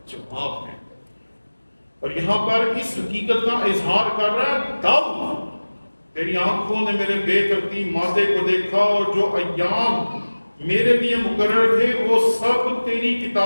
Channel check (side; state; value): both; inverted; correlation -1.00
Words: جواب ہے، اور یہاں پر اس حقیقت کا اظہار کر رہا ہے داؤد، تیری آنکھوں نے میرے بے ترتیب مادے کو دیکھا، اور جو ایام میرے لیے مقرر تھے وہ سب تیری